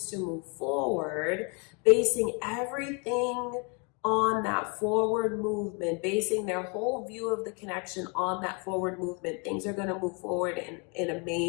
to move forward, basing everything on that forward movement, basing their whole view of the connection on that forward movement, things are going to move forward in a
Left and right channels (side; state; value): right; quieter; 34.3 dB